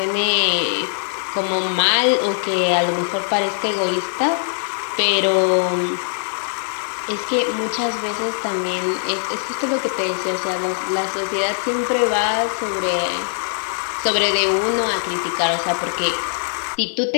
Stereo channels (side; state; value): right; silent; digital silence